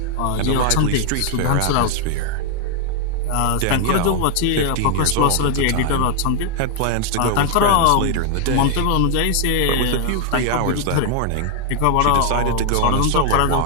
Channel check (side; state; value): both; different; correlation 0.00